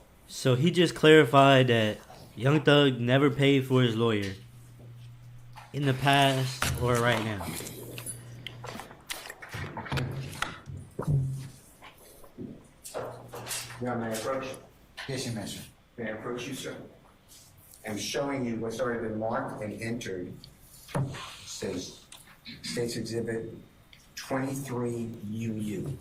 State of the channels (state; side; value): identical; both; correlation 1.00